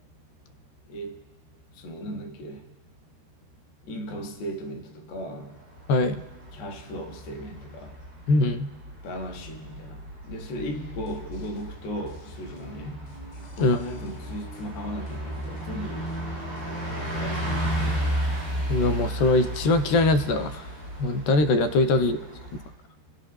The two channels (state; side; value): late; right; 13 ms